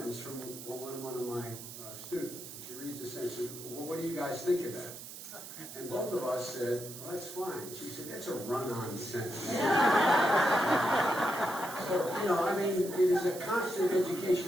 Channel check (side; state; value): right; noise; hiss, 12 dB below the sound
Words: from one of my students. She reads the sentence. She said, well, what do you guys think of that? And both of us said, well, that's fine. She said, that's a run-on sentence. So, it is a constant